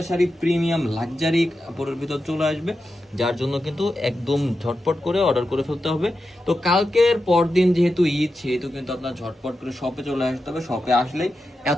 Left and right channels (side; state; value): both; normal; correlation 0.90